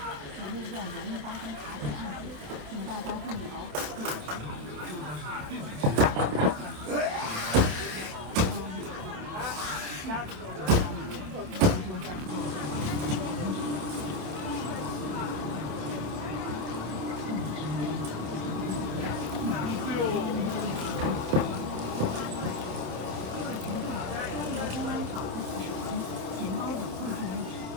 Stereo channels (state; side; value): late; left; 28 ms